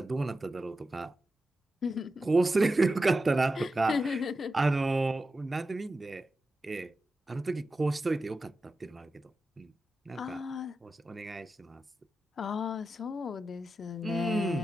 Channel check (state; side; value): normal; both; correlation 0.91